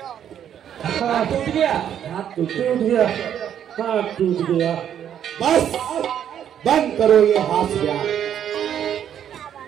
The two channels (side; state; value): left; quieter; 9.6 dB